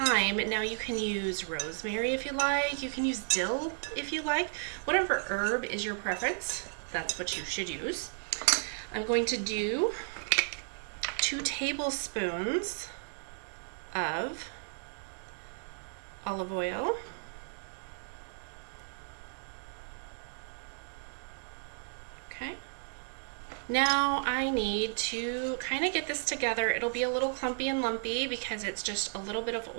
Now you can use rosemary if you like, you can use dill if you like, whatever herb is your preference, that's what you should use. I'm going to do 2 tablespoons of olive oil, okay. Now I need to kind of get this together. It'll be a little clumpy and lumpy because it's just a little bit of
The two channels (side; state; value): left; silent; digital silence